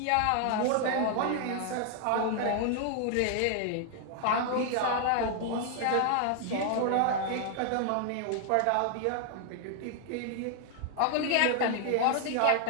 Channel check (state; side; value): different; both; correlation 0.00